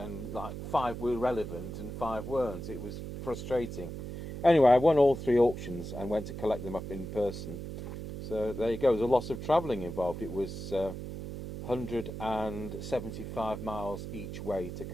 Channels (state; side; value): noise; right; hum, 8 dB below the sound